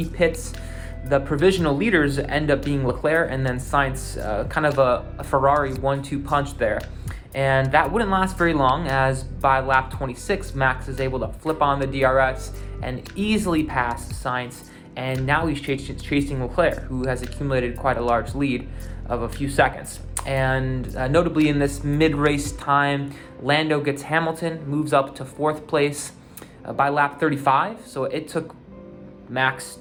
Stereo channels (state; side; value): identical; both; correlation 1.00